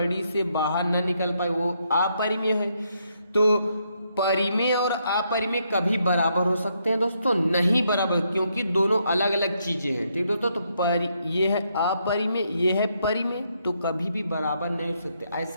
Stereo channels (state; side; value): inverted; both; correlation -0.76